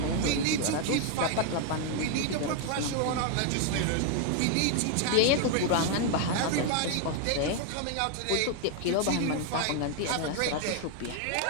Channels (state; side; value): different; both; correlation 0.00